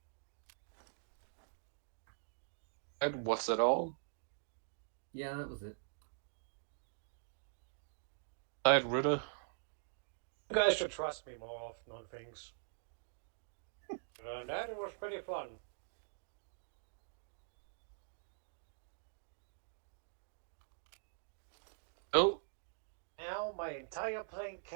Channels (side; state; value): left; silent; digital silence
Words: And what's that all? Yeah, that was it. Alright, Ritter. You guys should trust me more often on things. That was pretty fun. Oh, Now my entire plane